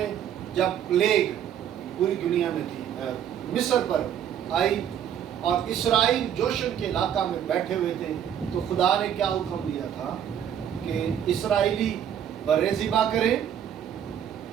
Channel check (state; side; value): quieter; left; 9.5 dB